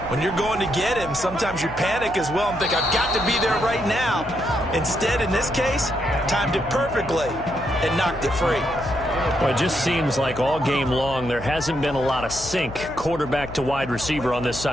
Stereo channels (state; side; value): noise; left; hum, 14 dB below the sound